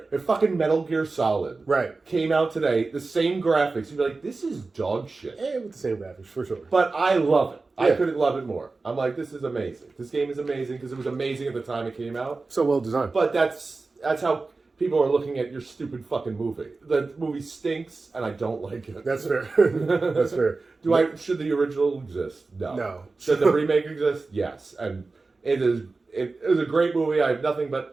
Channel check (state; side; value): quieter; left; 3.8 dB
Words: If fucking Metal Gear Solid came out today, the same graphics, you'd be like, this is dog shit. With the same graphics for sure. But I love it. Yeah. I couldn't love it more. I'm like, this is amazing. This game is amazing because it was amazing at the time it came out. So well designed. But that's how people are looking at your stupid fucking movie. The movie stinks, and I don't like it. That's fair. That's fair. Should the original exist? No. No. Should the remake exist? Yes. And it is a great movie. I have nothing